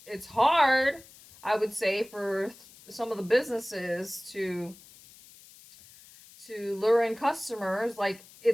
hard, I would say, for some of the businesses to lure in customers. Like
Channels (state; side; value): noise; left; hiss, 22 dB below the sound